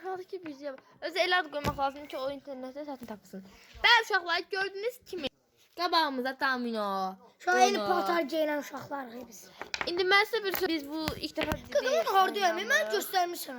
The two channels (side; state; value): both; identical; correlation 1.00